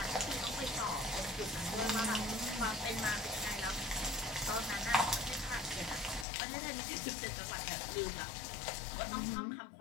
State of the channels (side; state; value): right; drops out; at 6.2 s